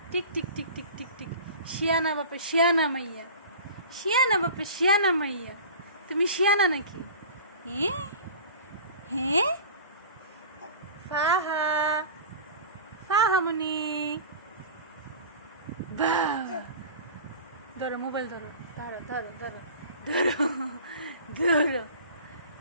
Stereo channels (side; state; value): both; inverted; correlation -0.38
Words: tick tick tick tick tick tick. শিয়ানা বাপে শিয়ানা মাইয়া, শিয়ানা বাপে শিয়ানা মাইয়া। তুমি শিয়ানা নাকি? হ্যাঁ হ্যাঁ। ফাহা, ফাহামুনি, বাহ। ধরো মোবাইল ধরো, ধরো ধরো ধরো ধরো ধরো